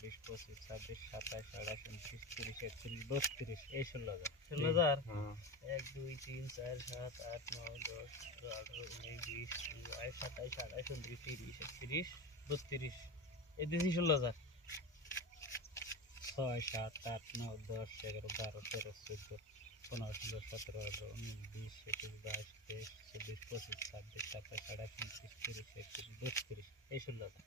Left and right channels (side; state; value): both; normal; correlation 0.23